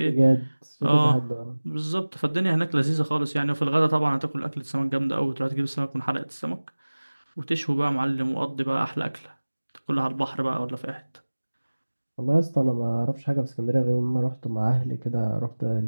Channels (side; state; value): both; inverted; correlation -1.00